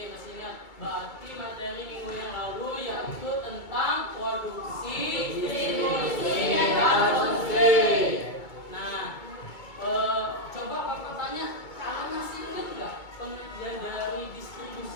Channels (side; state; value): right; late; 2.2 ms